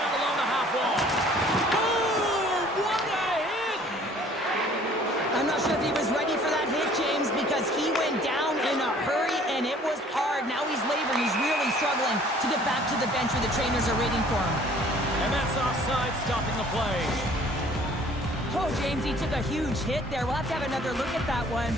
along the half wall. Oh, what a hit! I'm not sure if he was ready for that hit, James, because he went down in a hurry, and it was hard. Now he's laboring. He's really struggling to get back to the bench where the trainers are waiting for him. And that's offside, stopping the play. Oh, James, he took a huge hit there. We'll have to have another look at that one,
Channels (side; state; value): both; normal; correlation 0.54